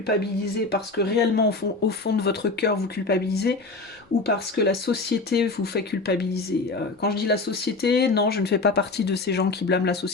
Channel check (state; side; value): quieter; right; 3.6 dB